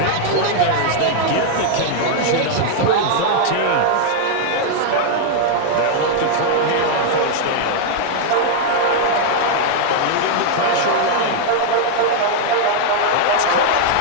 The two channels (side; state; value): both; different; correlation -0.01